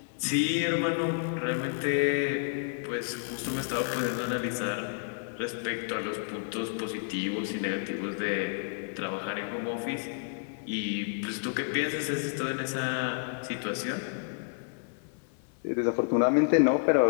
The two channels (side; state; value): right; silent; digital silence